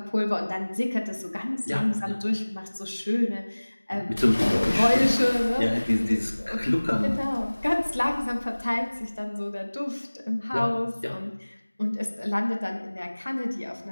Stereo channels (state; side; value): inverted; both; correlation -1.00